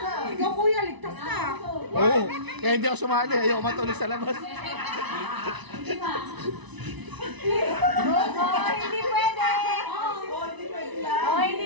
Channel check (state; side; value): late; left; 1.0 ms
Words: Ikaw kuya, ligtas ka. Oo. Kaya hindi ako sumali. Ayaw matulog sa labas. Sige pa. Hindi pwede.